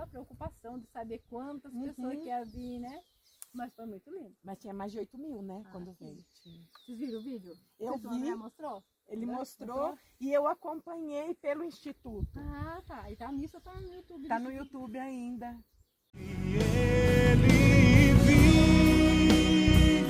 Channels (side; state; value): both; identical; correlation 1.00